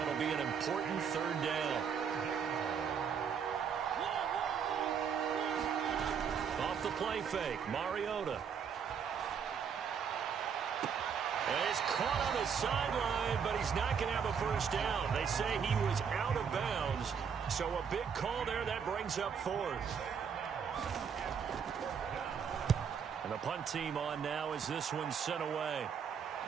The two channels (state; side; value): quieter; left; 7.0 dB